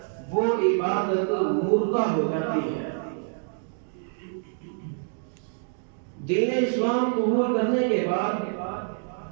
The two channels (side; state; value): left; silent; digital silence